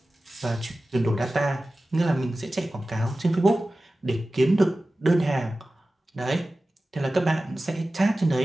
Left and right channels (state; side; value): normal; both; correlation 0.96